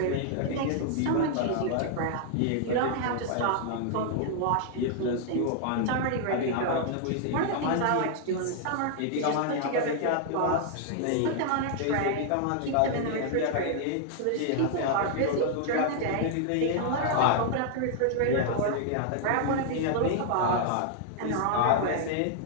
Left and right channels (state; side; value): different; both; correlation 0.00